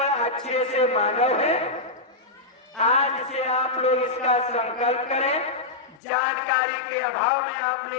से मानव हैं। आज से आप लोग इसका संकल्प करें। जानकारी के अभाव में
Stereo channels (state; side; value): drops out; right; at 6.0 s